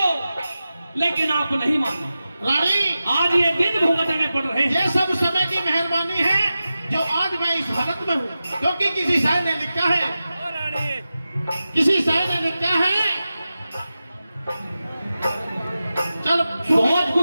लेकिन आप नहीं माने। रानी, आज ये दिन भुगतने पड़ रहे हैं। ये सब समय की मेहरबानी है जो आज मैं इस हालत में हूँ, क्योंकि किसी शायर ने लिखा है, किसी शायर ने लिखा है, चल बहुत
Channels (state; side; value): inverted; both; correlation -0.93